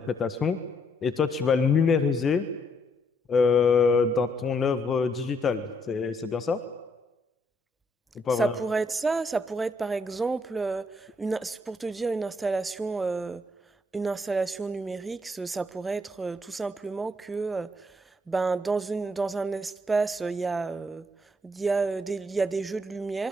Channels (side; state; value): both; normal; correlation 0.73